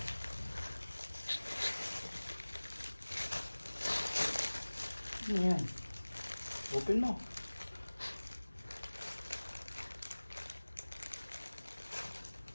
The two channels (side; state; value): both; inverted; correlation -1.00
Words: Ano yan? Open mo.